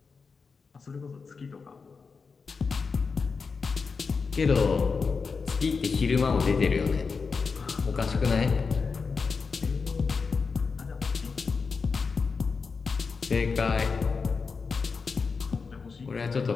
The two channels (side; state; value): right; quieter; 4.9 dB